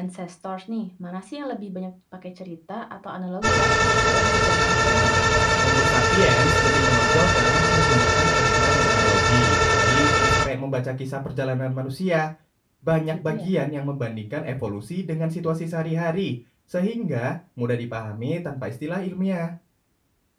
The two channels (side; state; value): both; identical; correlation 1.00